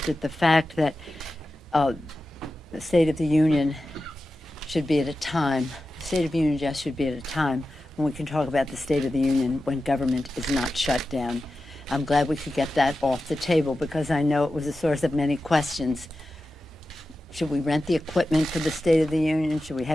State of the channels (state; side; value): normal; both; correlation 0.93